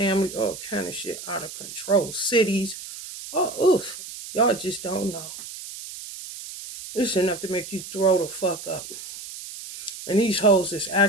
all kind of shit out of control. Cities, oh, oof, y'all just don't know. It's enough to make you throw the fuck up. And these hoes is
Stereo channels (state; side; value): noise; right; hiss, 12 dB below the sound